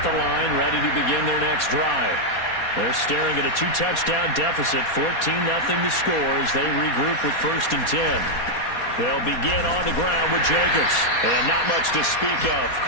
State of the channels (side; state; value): right; late; 4.2 ms